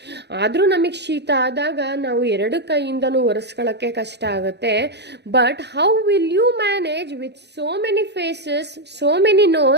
ಆದರೂ ನಮಗೆ ಶೀತ ಆದಾಗ ನಾವು 2 ಕೈಯಿಂದನೂ ಒರೆಸ್ಕೊಳ್ಳೋಕ್ಕೆ ಕಷ್ಟ ಆಗುತ್ತೆ. But how will you manage with so many faces, so many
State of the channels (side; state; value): left; late; 0.49 ms